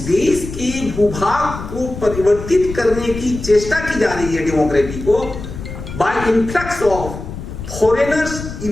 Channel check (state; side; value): noise; left; rumble, 10 dB below the sound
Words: देश के भूभाग को परिवर्तित करने की चेष्टा की जा रही है डेमोक्रेसी को by influx of foreigners